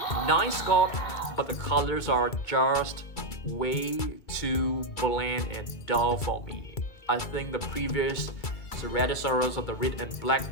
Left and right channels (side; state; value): right; late; 2.3 ms